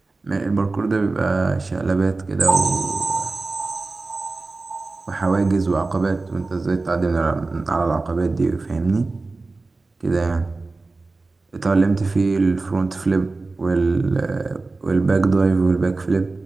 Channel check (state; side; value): quieter; left; 3.5 dB